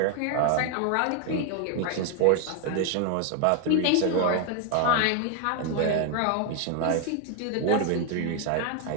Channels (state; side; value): different; both; correlation 0.01